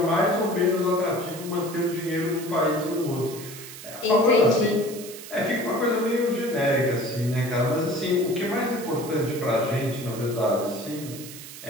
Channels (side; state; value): right; noise; hiss, 14 dB below the sound